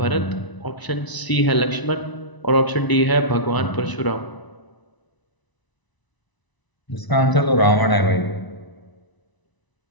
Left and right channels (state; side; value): late; right; 1.0 ms